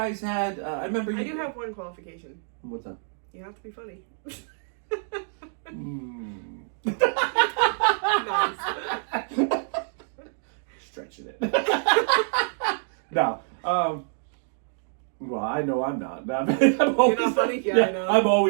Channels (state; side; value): silent; left; digital silence